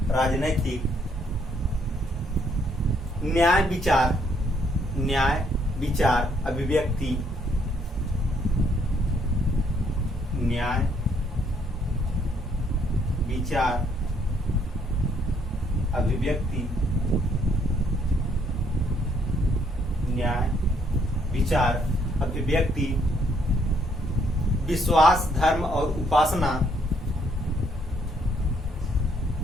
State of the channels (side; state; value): both; normal; correlation 0.69